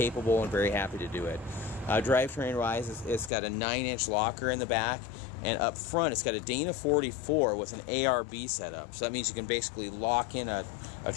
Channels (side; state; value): right; drops out; at 3.3 s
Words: and very happy to do it. Drivetrain wise, it's got a 9-inch locker in the back. And up front, it's got a Dana 44 with an ARB setup. So that means you can basically lock in a